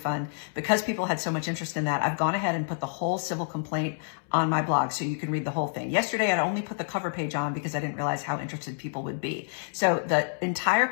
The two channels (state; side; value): silent; right; digital silence